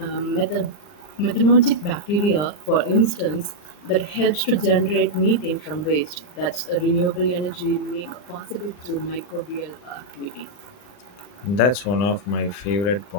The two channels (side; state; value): right; late; 39 ms